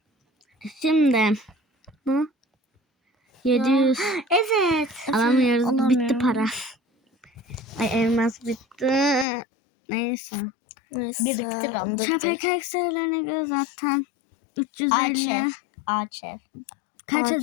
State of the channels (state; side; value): drops out; right; at 9.2 s